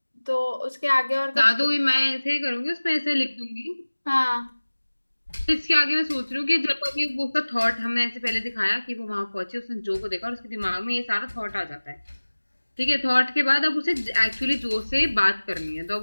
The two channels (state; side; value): inverted; both; correlation -1.00